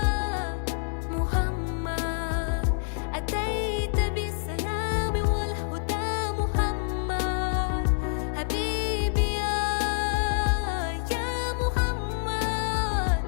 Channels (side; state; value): right; silent; digital silence